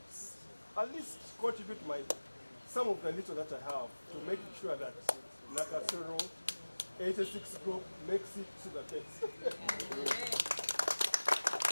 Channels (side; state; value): both; inverted; correlation -1.00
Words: at least contribute some of the little that I have to make sure that Nakasero 86 group makes it to the test.